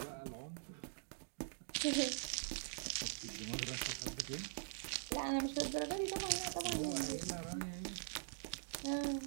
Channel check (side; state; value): left; silent; digital silence